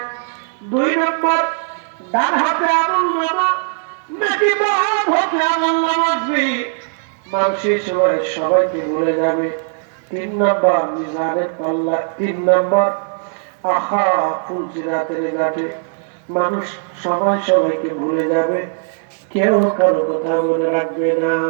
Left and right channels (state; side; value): silent; left; 67 dB below the other